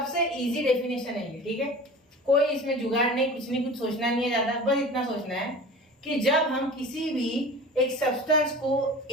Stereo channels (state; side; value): normal; both; correlation 0.38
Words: इजी डेफिनेशन है ये, ठीक है, कोई इसमें जुगाड़ नहीं, कुछ नहीं, कुछ सोचना नहीं है ज्यादा, बस इतना सोचना है कि जब हम किसी भी एक सब्सटेंस को